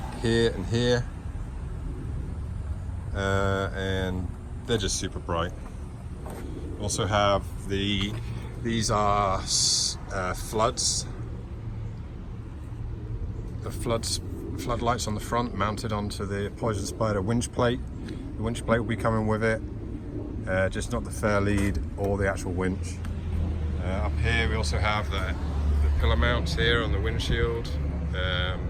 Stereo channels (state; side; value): identical; both; correlation 1.00